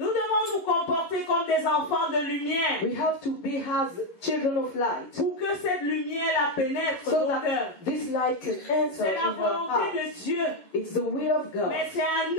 devons nous comporter comme des enfants de lumière we have to be as children of light, pour que cette lumière la pénètre so nos cœurs. that this light can enter C'est la in our volonté hearts. de Dieu, It's the will of God. mais c'est à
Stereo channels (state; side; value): late; right; 11 ms